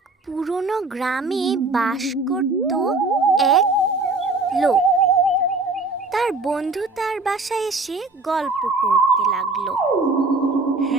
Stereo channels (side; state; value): left; quieter; 3.3 dB